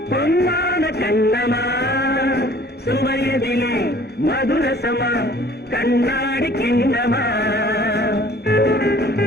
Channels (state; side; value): normal; both; correlation 0.52